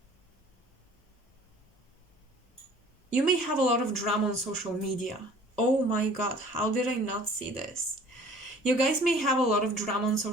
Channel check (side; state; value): both; normal; correlation 0.50